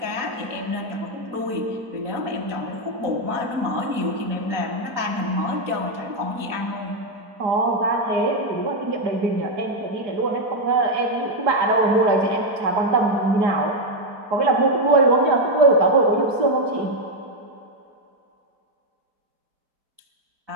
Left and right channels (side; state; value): left; late; 4.0 ms